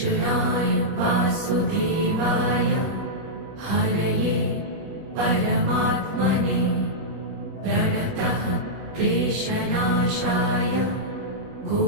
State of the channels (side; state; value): left; late; 21 ms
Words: वासुदेवाय हरये परमात्मने प्रणतः क्लेशनाशाय